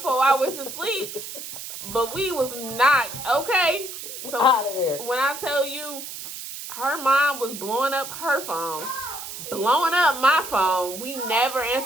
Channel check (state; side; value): noise; right; hiss, 9 dB below the sound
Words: I went to sleep, but we was knocked. Okay, so Out of there. when I tell you, her mom was blowing up her phone, blowing up my phone. We never